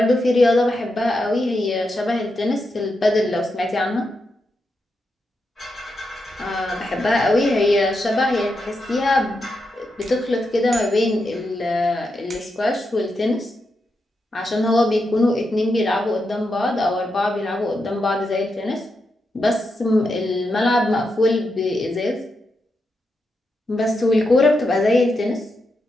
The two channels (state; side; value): normal; both; correlation 0.85